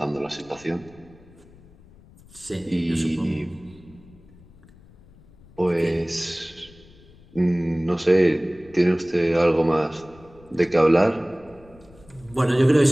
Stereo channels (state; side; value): noise; left; rumble, 25 dB below the sound